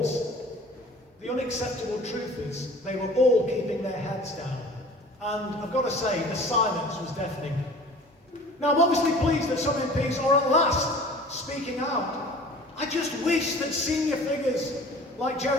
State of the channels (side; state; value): both; normal; correlation 0.45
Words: The unacceptable truth is they were all keeping their heads down. And I've got to say, the silence was deafening. Now, I'm obviously pleased that some MPs are at last speaking out. I just wish that senior figures like